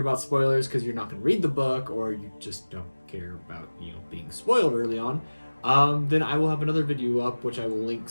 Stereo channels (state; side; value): inverted; both; correlation -1.00